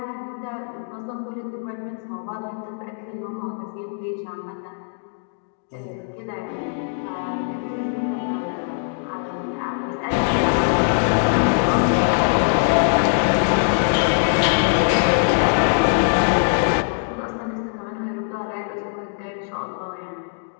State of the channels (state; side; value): silent; right; digital silence